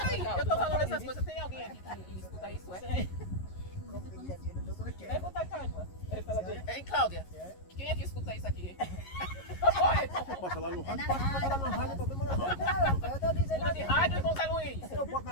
aí, eu tô falando essas coisas. Tem alguém aqui que escuta isso, é? Pergunta a Cláudia. Ei, Cláudia, quem é que escuta isso aqui? Passa lá no É rádio. na Passa lá rádio. no rádio, problema na rádio. Eu tô dizendo Escuta de rádio, Irmão Zé Luiz. Eu boto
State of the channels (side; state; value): right; late; 11 ms